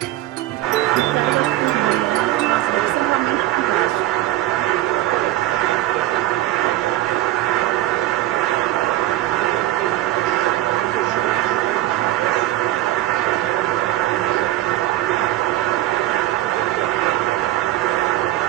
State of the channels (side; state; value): left; quieter; 15.4 dB